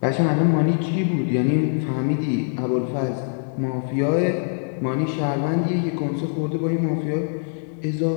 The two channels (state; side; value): silent; right; digital silence